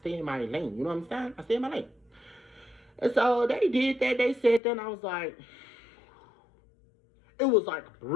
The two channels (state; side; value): drops out; right; at 4.6 s